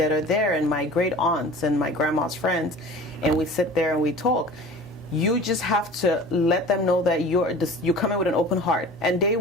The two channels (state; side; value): normal; both; correlation 0.41